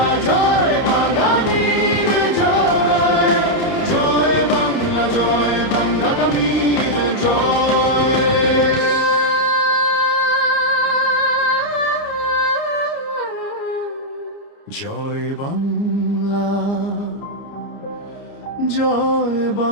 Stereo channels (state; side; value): late; right; 29 ms